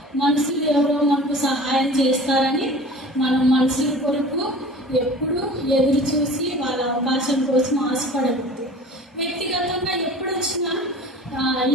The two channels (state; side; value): normal; both; correlation 0.42